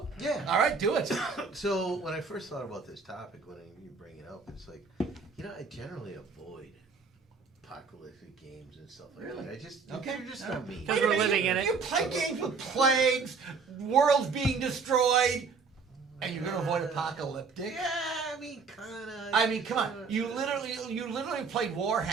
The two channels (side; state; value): left; quieter; 5.0 dB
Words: yeah. All right. Do it. So when I first thought about this topic, when you bring it up, it's like, I generally avoid apocalyptic games and stuff like that. I just Okay. they're just not me. Because Wait a we're minute, living in it. You play games with plagues, worlds being destroyed, and you're gonna avoid apocalyptic. Yeah, I mean, kinda. I mean, come on. You literally play